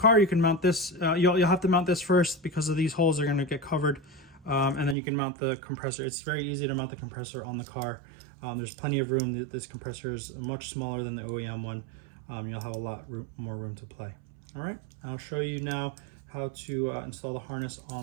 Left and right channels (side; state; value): left; drops out; at 5.0 s